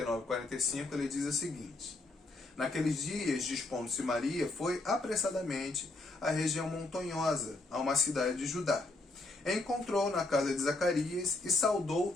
a 45, ele diz o seguinte: Naqueles dias, dispondo-se Maria, foi apressadamente à região montanhosa, a uma cidade de Judá. Encontrou na casa de Zacarias e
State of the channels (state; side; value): quieter; right; 3.0 dB